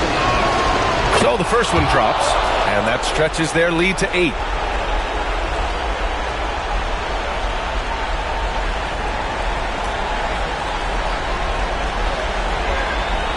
So the first one drops, and that stretches their lead to 8.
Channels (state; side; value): identical; both; correlation 1.00